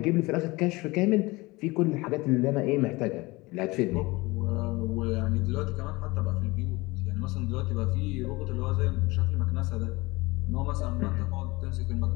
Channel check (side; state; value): right; quieter; 22.6 dB